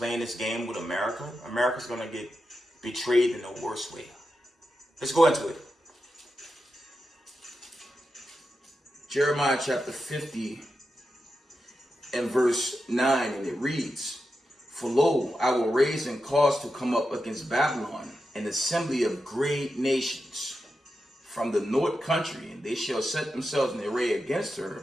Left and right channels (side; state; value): both; normal; correlation 0.89